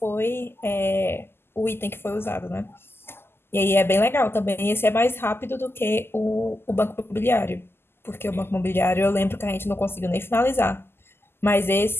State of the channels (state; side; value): late; right; 0.12 ms